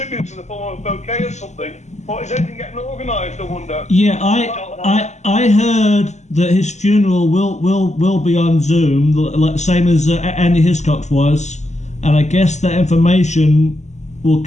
to the former bouquet or something? Or is anything getting organised, I wonder? Yeah, I heard that his funeral will be on Zoom, like same as Andy Hiscox was, and I guess that information will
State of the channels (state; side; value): late; right; 0.33 ms